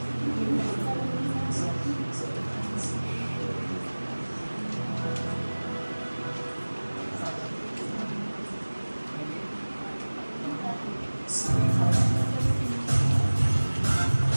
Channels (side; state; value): both; inverted; correlation -1.00